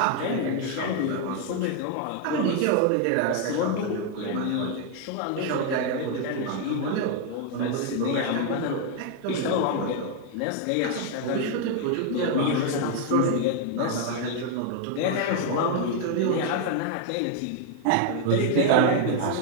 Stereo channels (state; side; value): different; both; correlation 0.00